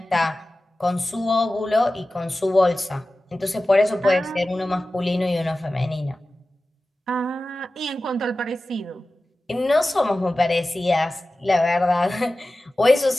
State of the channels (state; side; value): normal; both; correlation 0.95